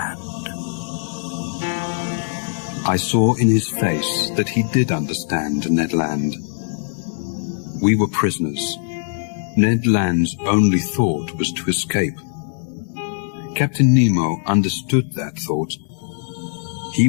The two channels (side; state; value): right; silent; 64 dB below the other